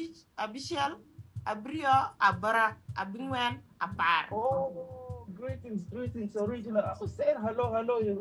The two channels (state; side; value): identical; both; correlation 1.00